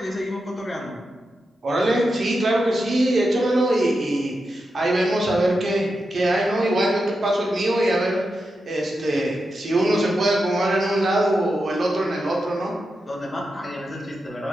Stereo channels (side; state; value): both; normal; correlation 0.88